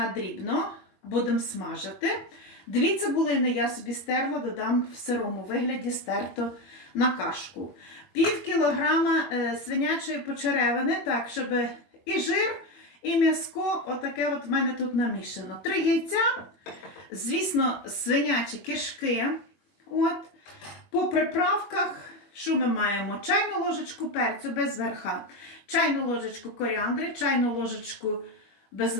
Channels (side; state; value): right; late; 21 ms